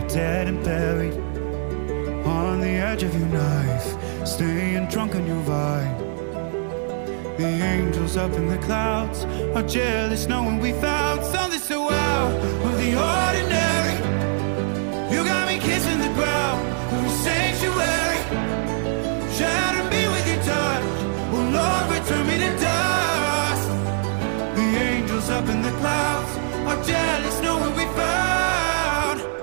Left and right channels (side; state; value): left; silent; 58 dB below the other